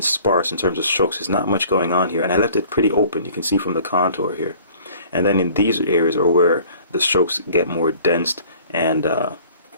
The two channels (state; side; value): inverted; both; correlation -0.51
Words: sparse in terms of strokes. There's not much going on here, and I left it pretty open. You can see from the contour here. And then in these areas are where the strokes get more dense and a